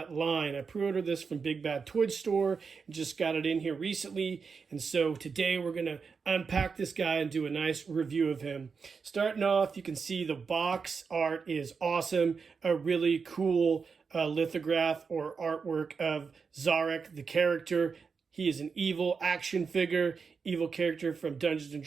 line. I pre-ordered this from Big Bad Toy Store and just got it in here recently, and so today we're going to unpack this guy and do a nice review of him. Starting off, you can see the box art is awesome. A really cool lithograph or artwork of Zarak, the character. He is an evil action figure, evil character from Dungeons &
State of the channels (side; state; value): left; quieter; 5.4 dB